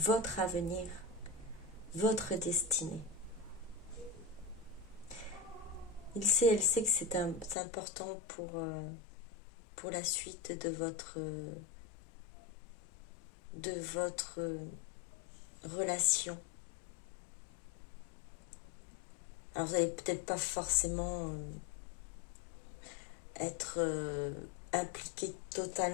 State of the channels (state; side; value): drops out; right; at 7.6 s